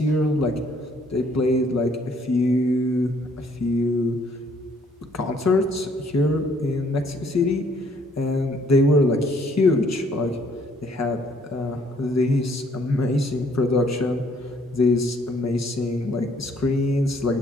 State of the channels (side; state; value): both; normal; correlation 0.64